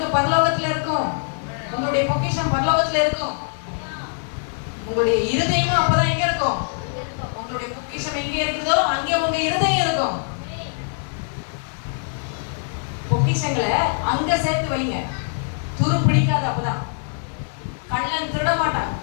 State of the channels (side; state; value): right; silent; digital silence